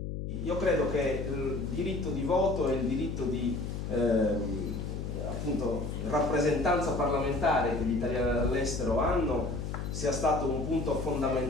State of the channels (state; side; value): noise; left; hum, 5 dB below the sound